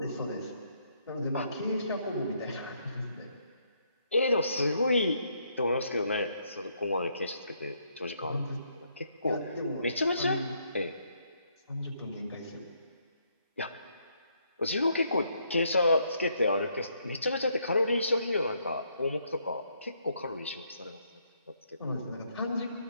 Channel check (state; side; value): inverted; both; correlation -0.73